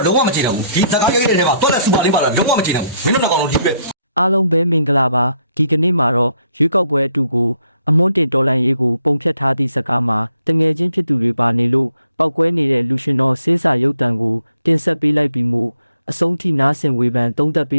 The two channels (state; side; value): inverted; both; correlation -0.72